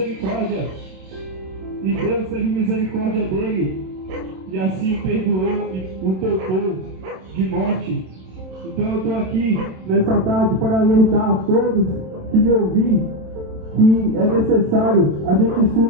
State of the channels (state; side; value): late; left; 27 ms